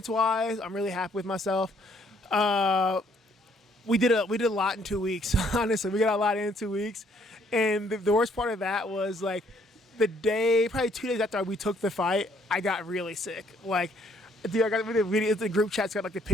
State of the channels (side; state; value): both; normal; correlation 0.66